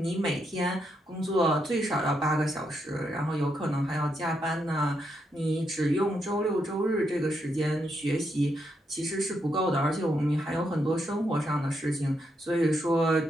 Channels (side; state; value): both; normal; correlation 0.80